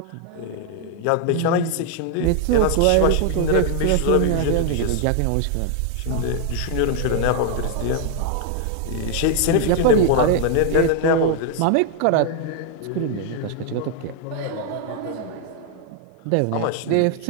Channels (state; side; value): different; both; correlation 0.00